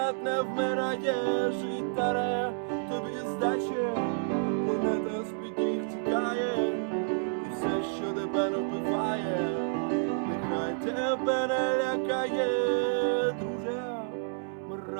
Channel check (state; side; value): silent; left; 58 dB below the other